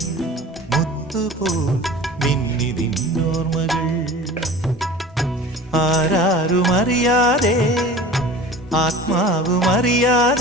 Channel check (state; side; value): normal; both; correlation 0.39